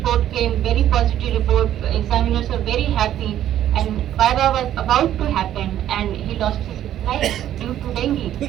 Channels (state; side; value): quieter; left; 11.7 dB